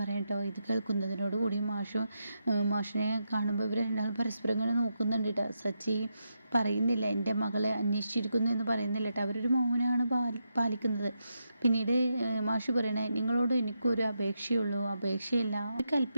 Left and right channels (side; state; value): both; inverted; correlation -0.84